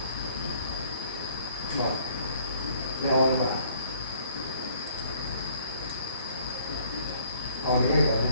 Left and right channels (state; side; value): inverted; both; correlation -0.61